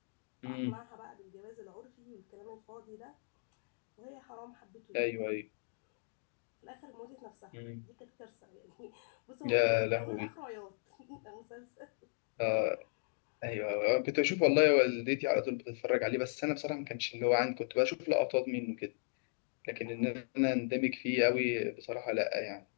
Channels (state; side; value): silent; right; digital silence